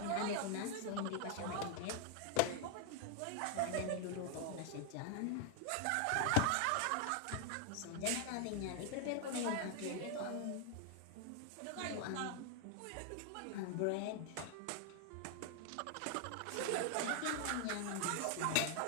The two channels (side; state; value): both; different; correlation 0.00